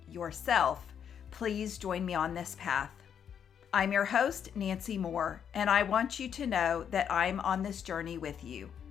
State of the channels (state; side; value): quieter; right; 8.2 dB